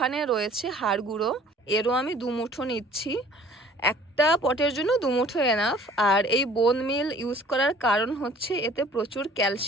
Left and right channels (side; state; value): both; normal; correlation 0.52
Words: রয়েছে হাড় গুঁড়ো, এরও আমি 2 মুঠো নিচ্ছি। একটা পটের জন্য 2 মুঠো এনাফ। আর এই বোন মিল ইউজ করার কারণ হচ্ছে এতে প্রচুর